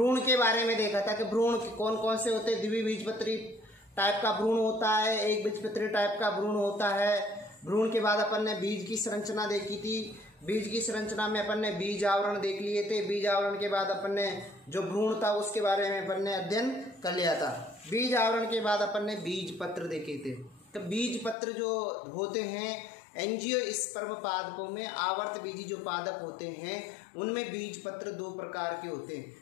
के बारे में देखा था कि भ्रूण कौन कौन से होते हैं। द्विबीजपत्री टाइप का भ्रूण होता है, एक बीजपत्री टाइप का भ्रूण होता है। भ्रूण के बाद अपन ने बीज की संरचना देखी थी। बीज की संरचना में अपन ने बीज आवरण देख लिए थे। बीज आवरण के बाद अपन ने जो भ्रूण था उसके बारे में अपन ने अध्ययन कर लिया था। बीज आवरण के बाद अपन ने बीज पत्र देखे थे। तो बीज पत्र जो होते हैं एंजियोस्पर्म पादपों में आवर्त बीजी जो पादप होते हैं उनमें बीज पत्र दो प्रकार के होते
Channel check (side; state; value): right; drops out; at 21.4 s